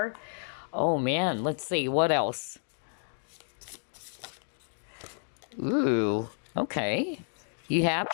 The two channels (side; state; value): right; silent; digital silence